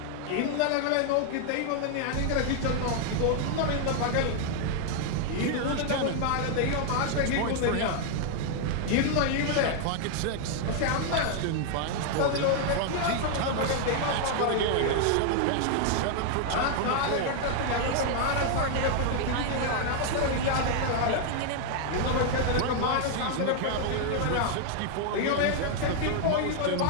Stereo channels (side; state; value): both; different; correlation 0.00